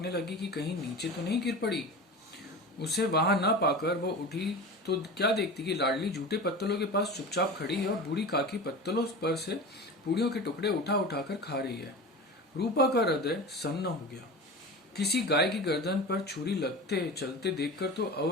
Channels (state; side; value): normal; both; correlation 0.31